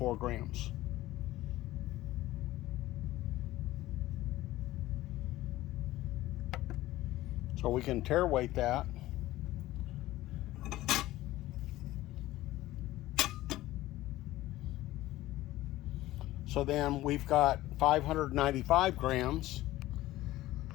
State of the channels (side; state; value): right; quieter; 16.4 dB